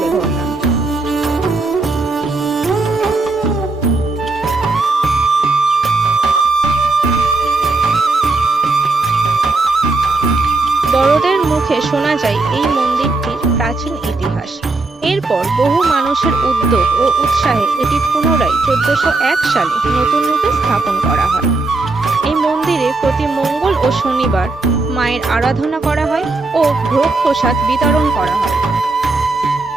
ধরলাম। বড়দের মুখে শোনা যায় এই মন্দিরটির প্রাচীন ইতিহাস। এরপর বহু মানুষের উদ্যোগ ও উৎসাহে এটি পুনরায় 1401 সালে নতুন রূপে স্থাপন করা হয়। এই মন্দিরে প্রতি মঙ্গল ও শনিবার মায়ের আরাধনা করা হয় ও ভোগ প্রসাদ বিতরণ করা হয়।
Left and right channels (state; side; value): quieter; left; 3.4 dB